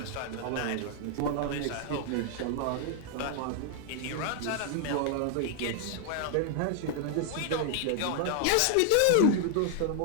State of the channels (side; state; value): both; different; correlation 0.00